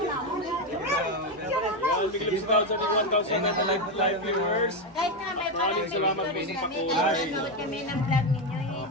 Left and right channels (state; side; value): normal; both; correlation 0.09